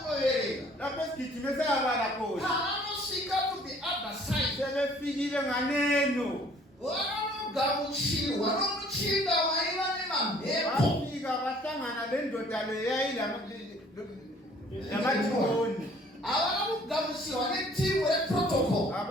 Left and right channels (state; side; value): normal; both; correlation 0.56